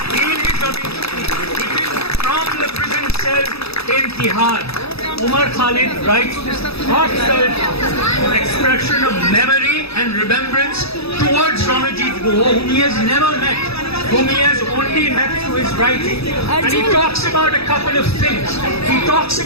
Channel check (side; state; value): right; late; 0.78 ms